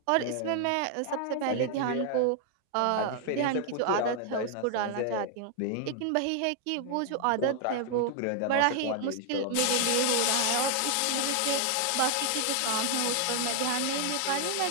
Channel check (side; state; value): both; different; correlation 0.00